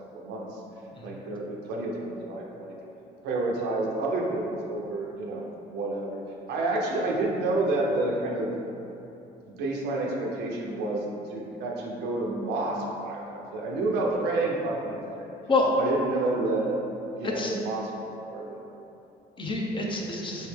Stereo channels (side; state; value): both; normal; correlation 0.47